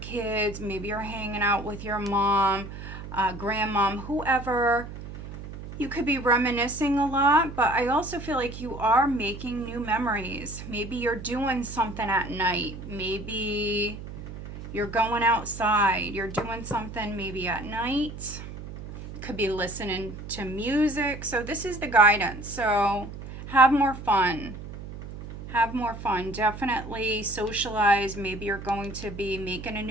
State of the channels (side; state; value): right; noise; hum, 11 dB below the sound